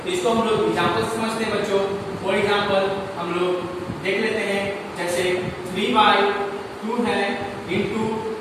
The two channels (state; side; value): identical; both; correlation 1.00